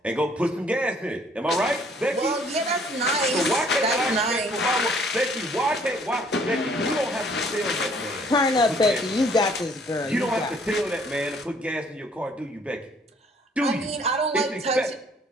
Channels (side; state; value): both; normal; correlation 0.60